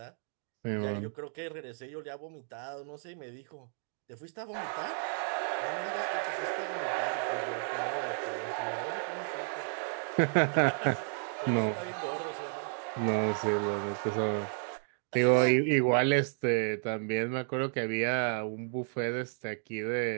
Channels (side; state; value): left; silent; 56 dB below the other